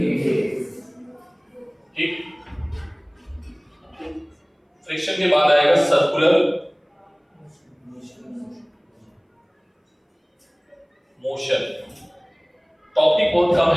डेज। ठीक। फ्रिक्शन के बाद आएगा सर्कुलर मोशन। टॉपिक बहुत कम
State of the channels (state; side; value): identical; both; correlation 1.00